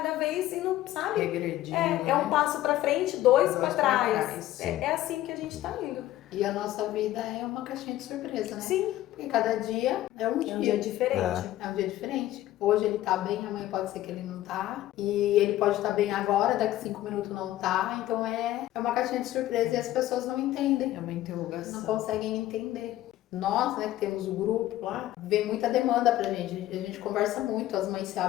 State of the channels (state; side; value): quieter; right; 14.5 dB